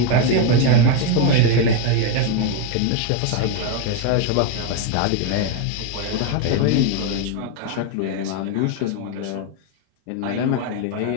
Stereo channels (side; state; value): both; different; correlation 0.01